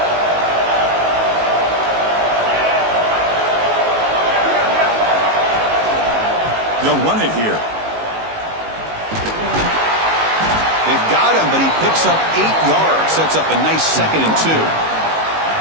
They'll run it here. They've got him, but he picks up 8 yards. Sets up a nice 2nd and 2.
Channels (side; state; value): left; late; 19 ms